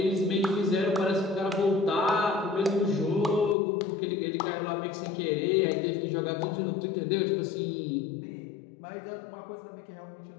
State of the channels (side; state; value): right; drops out; at 3.6 s